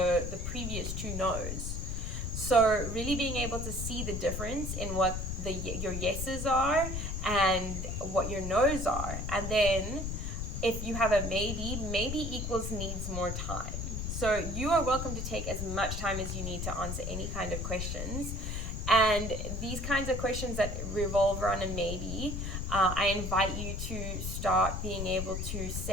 previous two no's? So really being able to see the difference in what your yeses are and what your no's are. And then if you have a maybe equals needs more time. So you are welcome to take as much time as you need to answer any kind of questions. And these kinds of questions that revolve around a maybe, I invite you to start being able to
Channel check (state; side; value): noise; left; rumble, 3 dB below the sound